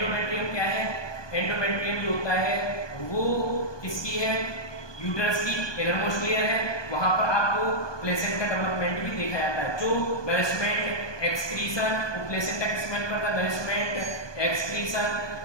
क्या है? एंडोमेट्रियम जो होता है वो किसकी है? यूटेरस की इनरमोस्ट लेयर है। वहां पर आपको प्लेसेंटा डेवलपमेंट भी देखा जाता है। जो नरिशमेंट एक्सक्रीशन, प्लेसेंटा किसमें करता है? Nourishment excretion,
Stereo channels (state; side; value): late; right; 1.2 ms